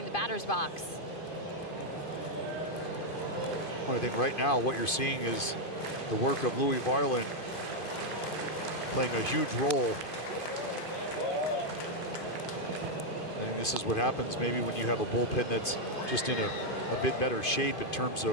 the batter's box. Well, I think right now what you're seeing is the work of Louis Varland playing a huge role. I think this is what happens maybe when you have a bullpen that's just in a bit better shape in terms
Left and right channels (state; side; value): late; right; 2.5 ms